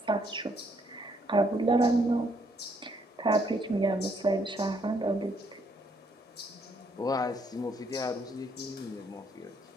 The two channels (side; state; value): both; normal; correlation 0.70